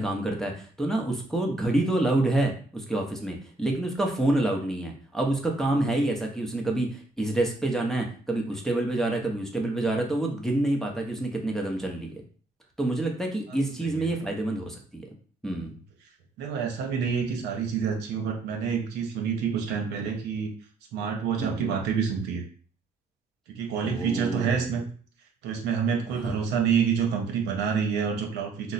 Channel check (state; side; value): quieter; left; 3.2 dB